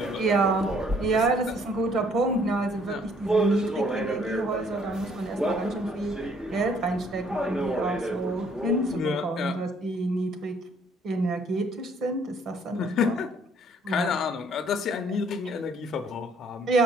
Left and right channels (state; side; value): normal; both; correlation 0.62